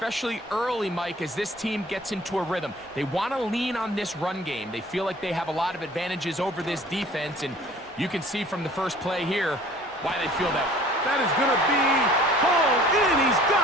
early, Mike, as this team gets into a rhythm. They want to lean on this run game. They feel like they have a lot of advantages over this defense, and you can see from the first play here why they feel that. That is going to be hauled in. He's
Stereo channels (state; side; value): normal; both; correlation 0.50